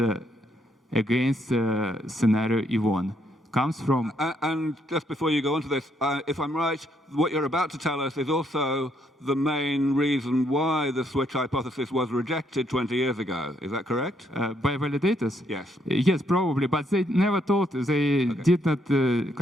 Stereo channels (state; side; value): normal; both; correlation 0.73